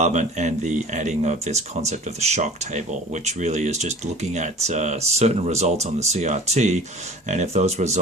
and the adding of this concept of the shock table, which really is just looking at certain results on the CRT, and if those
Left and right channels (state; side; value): normal; both; correlation 0.42